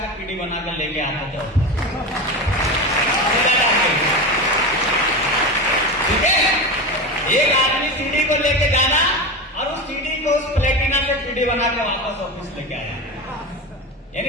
पीढ़ी बनाकर लेके आते थे। ठीक है, एक आदमी सीढ़ी को लेके जाना, और उस सीढ़ी को उस प्लेटिना से पीढ़ी बना के वापस ऑफिस लेके आया।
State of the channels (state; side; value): normal; both; correlation 0.22